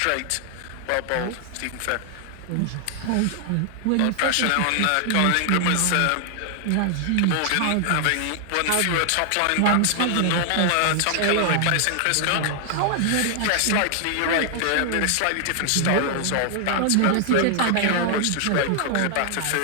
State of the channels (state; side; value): different; both; correlation 0.00